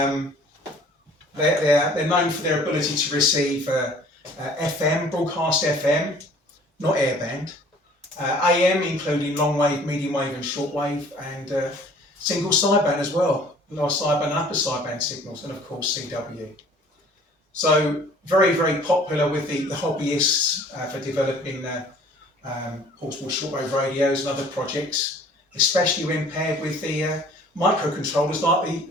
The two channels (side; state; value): both; normal; correlation 0.52